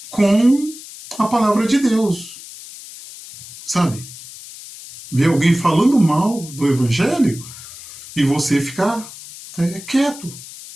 com a palavra de Deus. Sabe? Ver alguém falando mal do Evangelho e você ficar quieto,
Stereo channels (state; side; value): noise; left; hiss, 16 dB below the sound